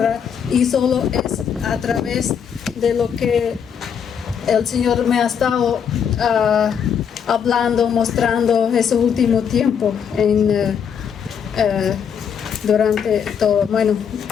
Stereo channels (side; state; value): right; quieter; 7.5 dB